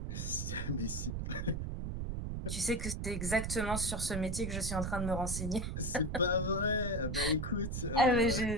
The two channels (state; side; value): noise; right; rumble, 3 dB below the sound